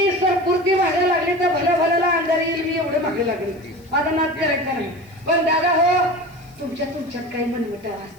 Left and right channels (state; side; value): noise; left; hiss, 30 dB below the sound